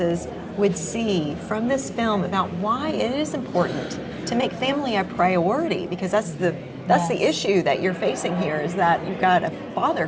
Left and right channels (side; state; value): both; identical; correlation 1.00